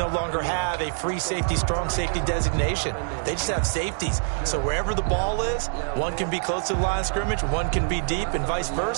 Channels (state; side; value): silent; left; digital silence